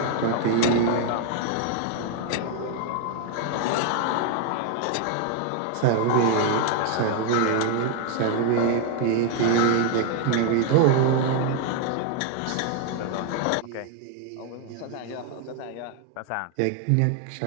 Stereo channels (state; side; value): different; both; correlation 0.00